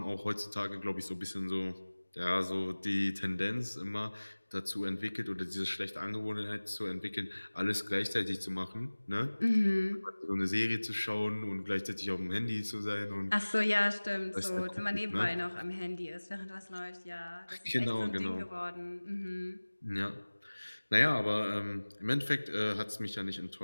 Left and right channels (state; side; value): inverted; both; correlation -1.00